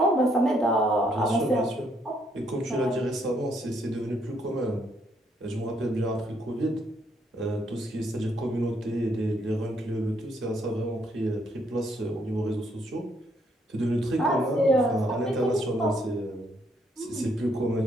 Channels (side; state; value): both; normal; correlation 0.72